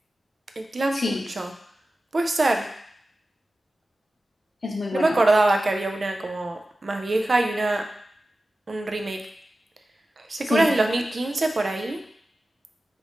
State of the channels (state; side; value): normal; both; correlation 0.95